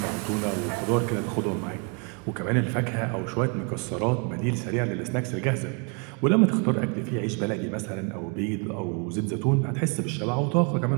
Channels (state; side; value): quieter; left; 35.8 dB